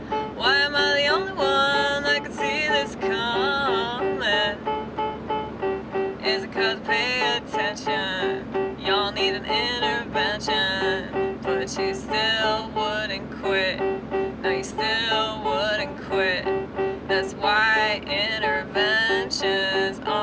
Why am I the only one that could see this coming? Is it cause pay attention? Y'all need an intervention, but you still wouldn't quit. No, you still wouldn't quit. That's why interventions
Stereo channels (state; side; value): identical; both; correlation 1.00